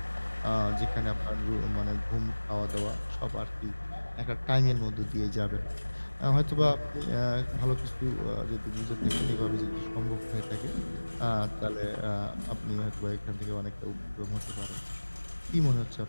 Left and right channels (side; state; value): both; inverted; correlation -1.00